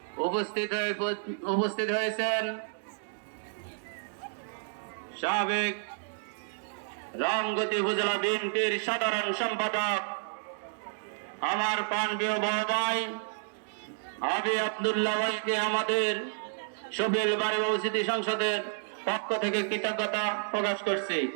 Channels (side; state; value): left; silent; digital silence